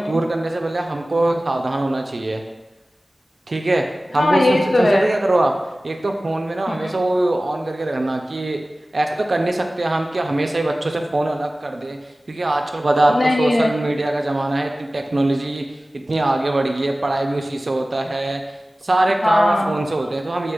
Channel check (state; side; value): normal; both; correlation 0.97